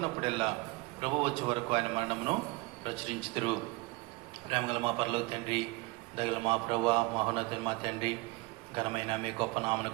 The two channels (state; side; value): quieter; left; 23.5 dB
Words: ప్రభు వచ్చే వరకు ఆయన మరణమును ప్రచురించుదురు. ప్రేమగల మా పరలోక తండ్రి, దయగల మా ప్రభువా, మహోన్నతుడైన మా తండ్రి, ఘనమైన మీ గొప్ప